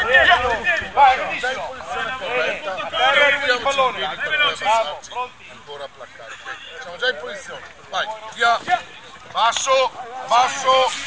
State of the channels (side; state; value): both; identical; correlation 1.00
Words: piedi. Vai, benissimo. Il pallone, dai veloci. Ancora a placcare. Siamo già in posizione. Vai, via. Basso, basso,